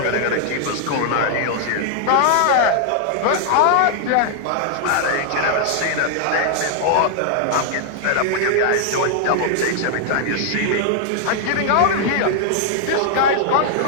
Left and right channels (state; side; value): different; both; correlation 0.00